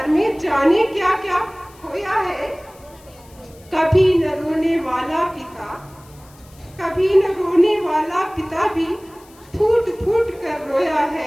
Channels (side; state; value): left; noise; hiss, 27 dB below the sound